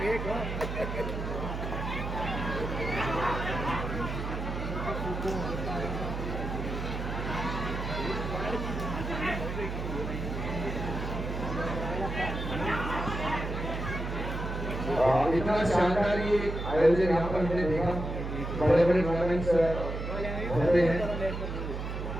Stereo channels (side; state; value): right; noise; hum, 5 dB below the sound